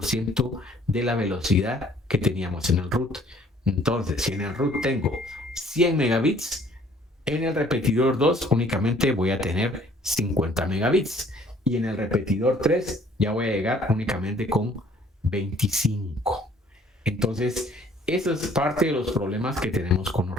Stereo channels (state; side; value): normal; both; correlation 0.58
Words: de la velocidad que teníamos en el root. Entonces, si en el root tengo 100 megabits, en el repetidor 2 únicamente voy a tener 50 megabits. Y en el repetidor 3 ya voy a llegar únicamente con 25. Entonces, eso es parte de los problemas que tenemos con los